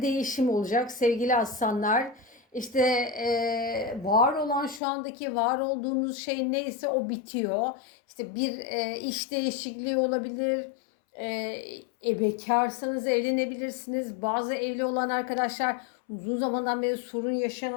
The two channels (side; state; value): right; drops out; at 4.8 s